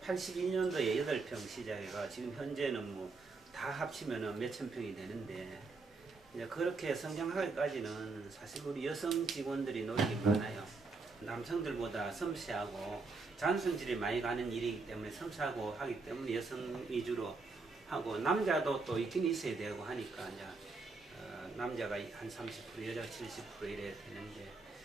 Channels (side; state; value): left; quieter; 3.9 dB